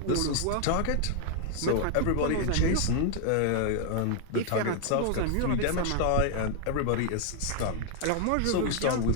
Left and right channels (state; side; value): different; both; correlation 0.00